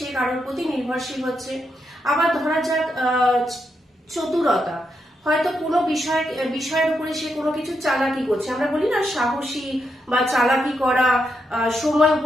কারোর প্রতি নির্ভরশীল হচ্ছে। আবার ধরা যাক চতুরতা, হয়তো কোনো বিষয়ের উপরে সে কোনো কিছু চালাকি করছে, আমরা বলি না সাহসী বা চালাকি করা, সময়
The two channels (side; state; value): both; normal; correlation 0.82